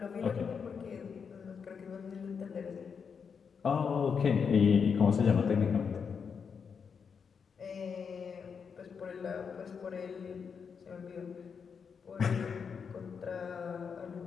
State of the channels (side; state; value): right; quieter; 6.2 dB